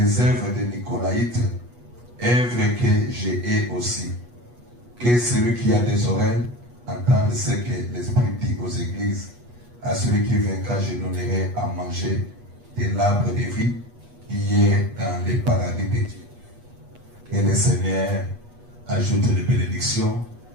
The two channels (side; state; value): left; late; 8.3 ms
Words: œuvres de Nicolaïte, œuvres que j'ai aussi. Que celui qui a des oreilles entende ce que l'Esprit dit aux églises. À celui qui vaincra, je donnerai à manger de l'arbre de vie qui est dans les paradis de Dieu. Et le Seigneur ajoute les bénédictions